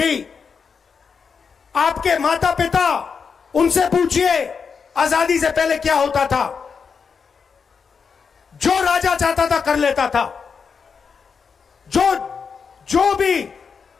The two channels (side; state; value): right; quieter; 5.8 dB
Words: आपके माता पिता, उनसे पूछिए आजादी से पहले क्या होता था। जो राजा चाहता था कर लेता था, जो भी